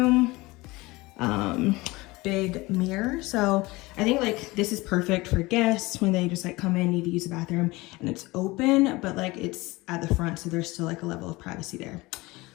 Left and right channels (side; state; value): right; quieter; 21.8 dB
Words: Big mirror. So I think like this is perfect for guests when they just like come in, need to use the bathroom, and it's open, but like it's at the front. So there's still like a level of privacy there.